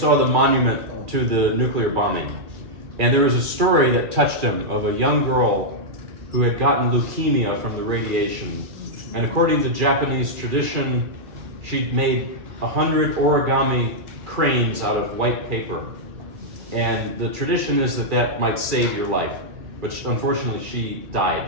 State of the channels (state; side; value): late; left; 2.4 ms